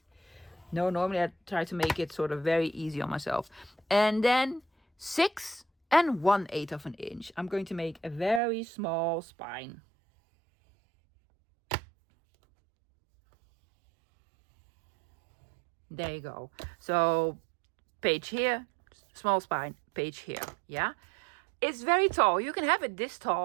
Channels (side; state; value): left; drops out; at 8.4 s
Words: No, normally I try to make it sort of very easy on myself. And then 6 1/8 of an inch. I'm going to make a very small spine. There you go. So page here, small spine, page here. Yeah. It's very tall. You can have it this